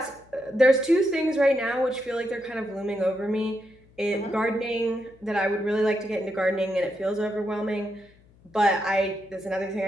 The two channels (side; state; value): left; noise; hum, 28 dB below the sound